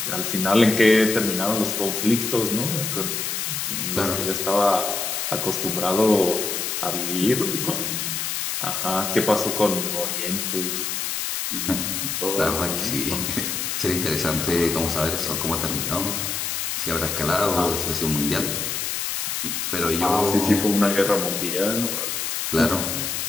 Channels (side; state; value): left; noise; hiss, 2 dB below the sound